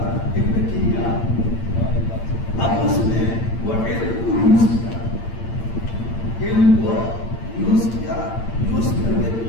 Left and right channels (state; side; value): late; right; 8.8 ms